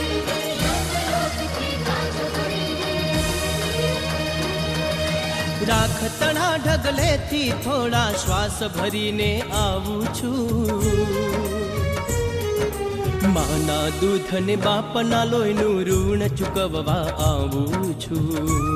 રાખતણા ઢગલેથી થોડા શ્વાસ ભરીને આવું છું, માના દૂધ ને બાપના લોહીનું ઋણ ચૂકવવા આવું છું,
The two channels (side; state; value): both; identical; correlation 1.00